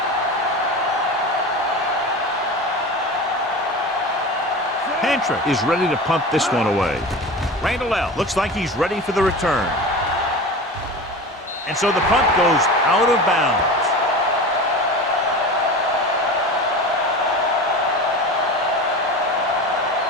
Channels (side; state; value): both; normal; correlation 0.31